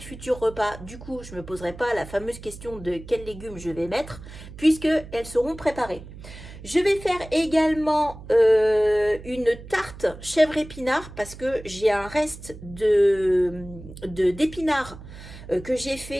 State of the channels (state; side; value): noise; right; hum, 15 dB below the sound